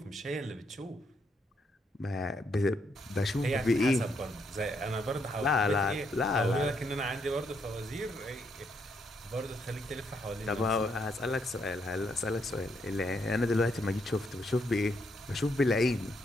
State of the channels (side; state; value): both; normal; correlation 0.76